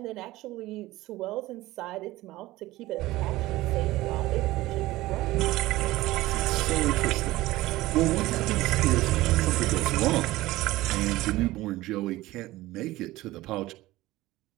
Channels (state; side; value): quieter; left; 17.8 dB